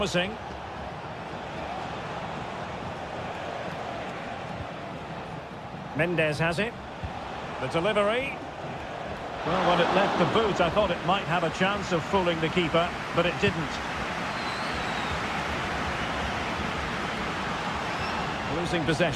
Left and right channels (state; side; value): identical; both; correlation 1.00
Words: Mendes has it. The delivery. Well, when it left the boot, I thought it might have a chance of fooling the keeper, but it didn't. Losing